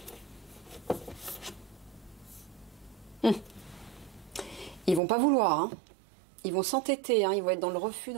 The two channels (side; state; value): left; drops out; at 5.0 s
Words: Ils vont pas vouloir, hein. Ils vont s'entêter, hein. Ils vont être dans le refus,